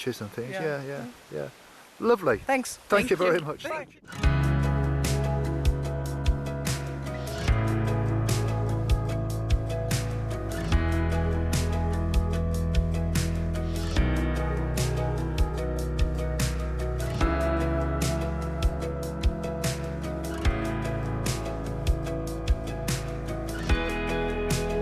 and things. Yeah. Lovely. Thanks. Thank you very much. Thank you.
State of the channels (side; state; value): both; identical; correlation 1.00